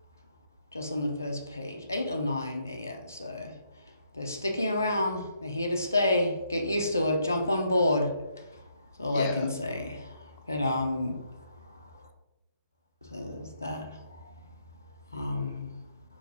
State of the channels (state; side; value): inverted; both; correlation -0.74